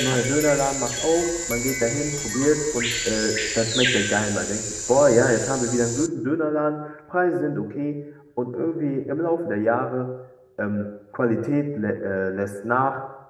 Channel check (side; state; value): both; identical; correlation 1.00